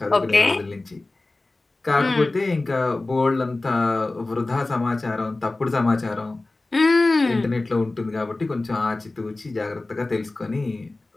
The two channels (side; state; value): right; quieter; 3.1 dB